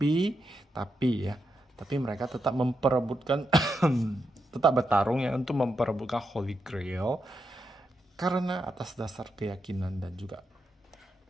mereka tetap memperebutkan tetap bertarung ya untuk memperebutkan Holy Grail. Karena atas dasar keyakinan dan juga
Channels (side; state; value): both; normal; correlation 0.84